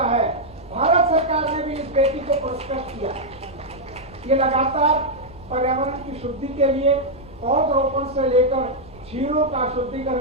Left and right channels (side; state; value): right; noise; rumble, 22 dB below the sound